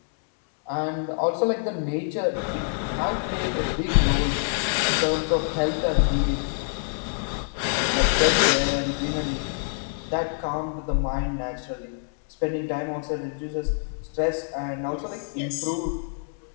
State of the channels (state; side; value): silent; right; digital silence